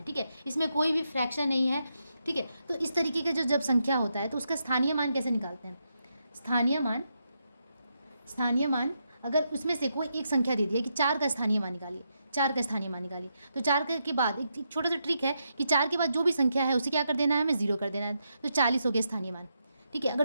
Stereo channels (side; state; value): both; inverted; correlation -0.82